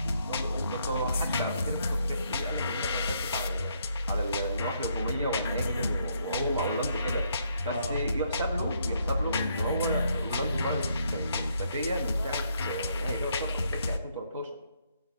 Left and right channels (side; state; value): both; inverted; correlation -0.73